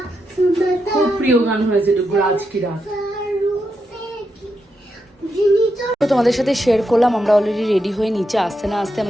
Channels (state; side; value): normal; both; correlation 0.84